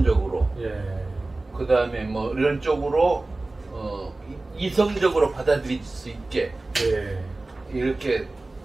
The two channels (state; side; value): quieter; left; 3.0 dB